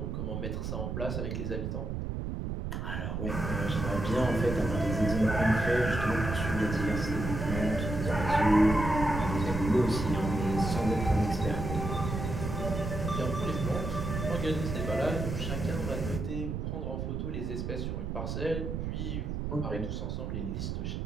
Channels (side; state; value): right; noise; rumble, 3 dB below the sound